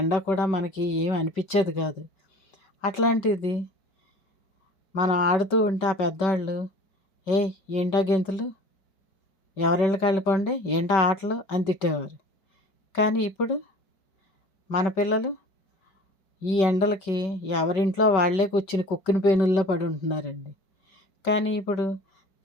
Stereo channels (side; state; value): right; late; 5.2 ms